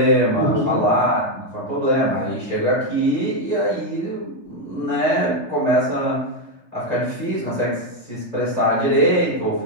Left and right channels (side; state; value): right; late; 3.3 ms